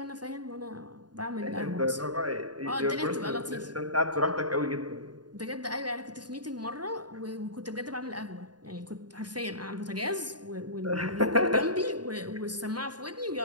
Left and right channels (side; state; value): left; late; 0.70 ms